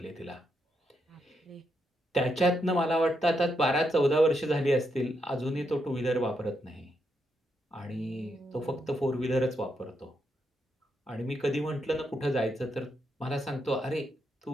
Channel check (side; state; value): both; normal; correlation 0.80